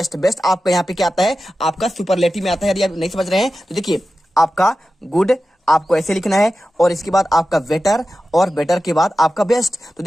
बेस्ट आपका यहाँ पे क्या आता है, आपका सुपरलेटिव में आता है। यदि आप नहीं समझ रहे हैं तो देखिए आपका गुड आपको ऐसे लिखना है, और इसके बाद आपका बेटर, और बेटर के बाद आपका बेस्ट। तो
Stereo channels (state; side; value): normal; both; correlation 0.93